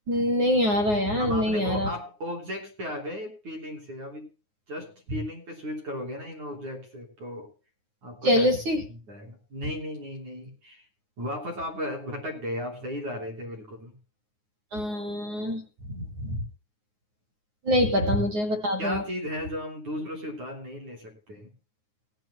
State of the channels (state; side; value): late; left; 9.5 ms